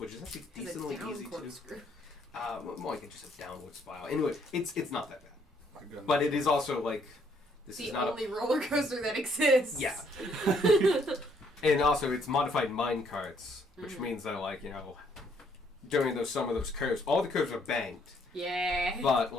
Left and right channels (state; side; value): normal; both; correlation 0.68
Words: is actually decently easy to. More like just a downward spiral. Anyway, it's not that bad, but it is also like this The is not only roller coaster that exists. Yeah. And also, it's modified mine carts, which means that, like, during some of those curves, all the curves are banked, Yeah. but,